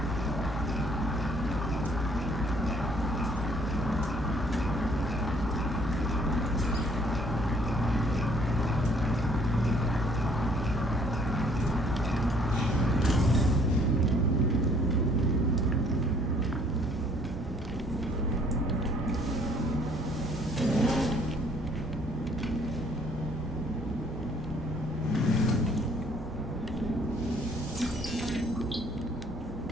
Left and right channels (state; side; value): normal; both; correlation 0.61